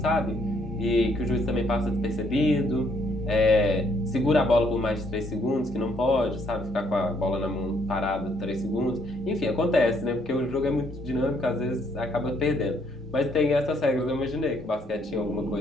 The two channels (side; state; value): both; normal; correlation 0.69